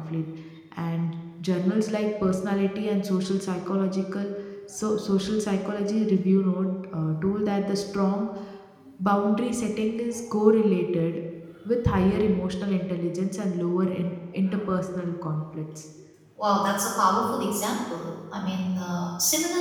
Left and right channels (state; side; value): identical; both; correlation 1.00